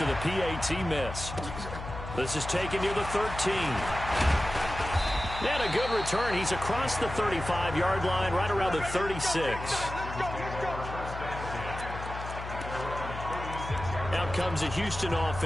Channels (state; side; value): noise; left; hum, 9 dB below the sound